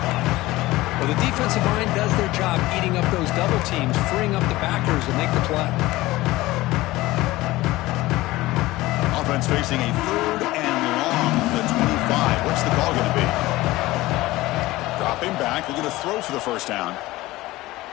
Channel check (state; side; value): quieter; right; 18.5 dB